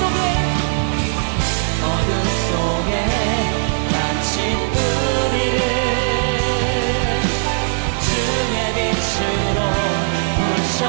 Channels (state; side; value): silent; left; digital silence